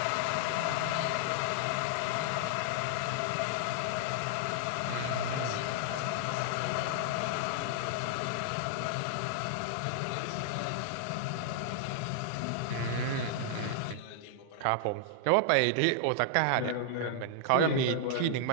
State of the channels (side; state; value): both; different; correlation -0.01